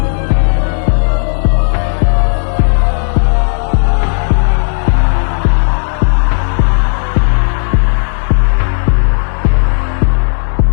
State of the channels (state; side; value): silent; right; digital silence